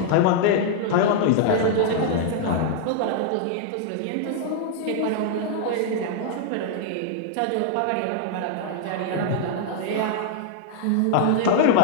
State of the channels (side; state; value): both; different; correlation -0.01